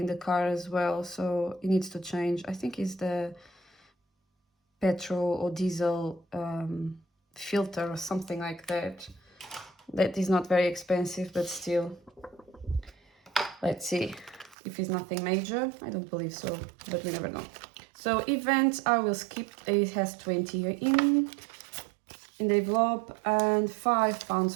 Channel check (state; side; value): drops out; left; at 14.6 s